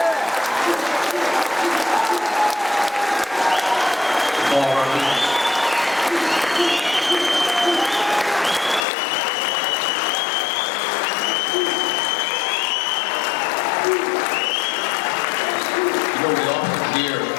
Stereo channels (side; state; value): right; drops out; at 8.8 s